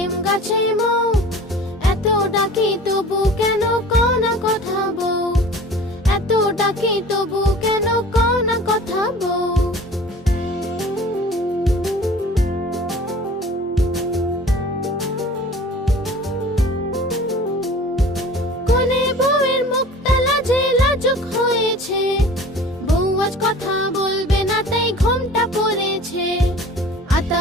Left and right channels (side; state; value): both; normal; correlation 0.43